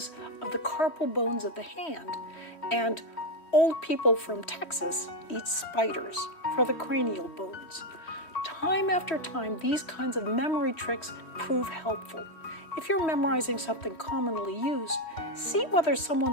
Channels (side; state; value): right; late; 3.1 ms